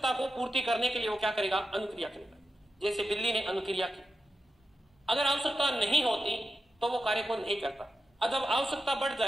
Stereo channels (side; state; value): both; normal; correlation 0.89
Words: को पूर्ति करने के लिए वो क्या करेगा? अनुक्रिया करेगा। जैसे बिल्ली ने अनुक्रिया की। अगर आवश्यकता नहीं होती तो वो कार्य को नहीं करता। अब जब आवश्यकता बढ़